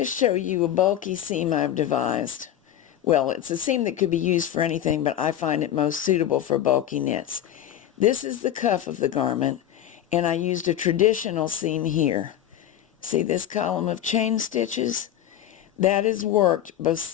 show you a bulky seam I've devised. Well, it's a seam that could be used for anything, but I find it most suitable for bulky knits. This is the cuff of the garment, and I used a traditional seam here. See this column of chain stitches? That is worked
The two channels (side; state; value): right; quieter; 11.3 dB